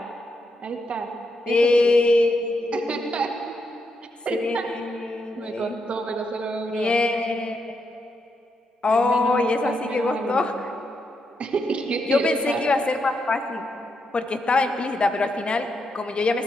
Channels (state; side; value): normal; both; correlation 0.81